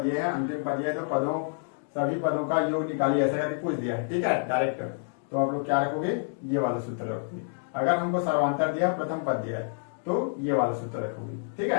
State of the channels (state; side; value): silent; right; digital silence